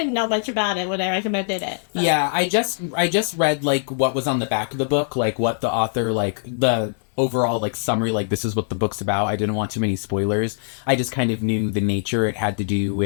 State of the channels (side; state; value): right; silent; 64 dB below the other